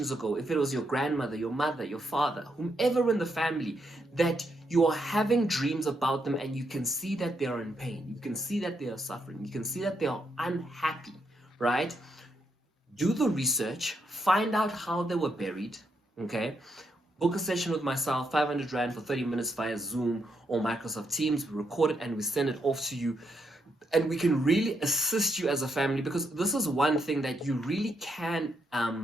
ago, if it was your grandmother, your mother, your father, whomever in the family, that you are having dreams about them and you can see that they are in pain, you can see that they are suffering, you can see that they are unhappy, right? Do the research, find out how they were buried, okay? Book a session with myself, 500 Rand for 30 minutes via Zoom or Microsoft Teams. We record it and we send it off to you. And we can really assist you as a family, because this is one thing that you really can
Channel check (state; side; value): normal; both; correlation 0.79